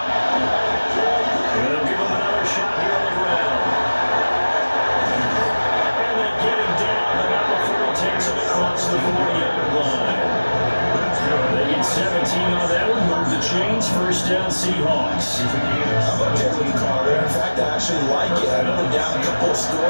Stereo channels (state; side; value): inverted; both; correlation -1.00